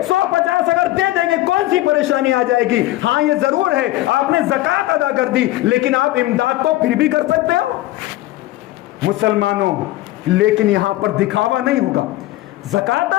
150 اگر دے دیں گے، کون سی پریشانی آ جائے گی؟ ہاں یہ ضرور ہے آپ نے زکوٰۃ ادا کر دی، لیکن آپ امداد تو پھر بھی کر سکتے ہو مسلمانوں۔ لیکن یہاں پر دکھاوا نہیں ہوگا۔ زکوٰۃ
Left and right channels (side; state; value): right; quieter; 16.8 dB